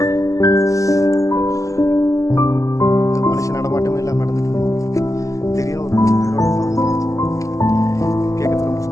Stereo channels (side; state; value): right; late; 0.16 ms